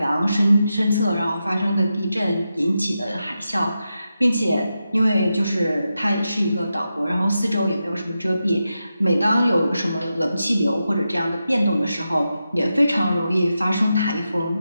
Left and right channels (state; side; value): inverted; both; correlation -0.89